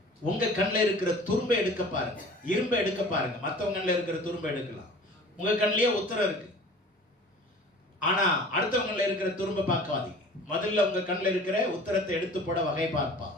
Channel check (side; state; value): both; normal; correlation 0.44